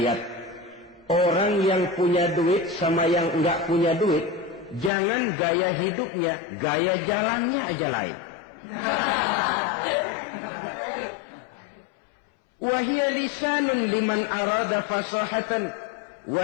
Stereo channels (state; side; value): drops out; right; at 4.9 s